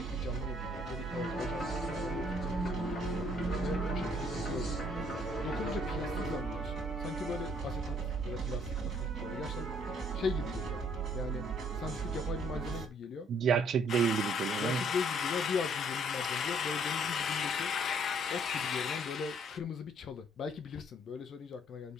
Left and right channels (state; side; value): normal; both; correlation 0.64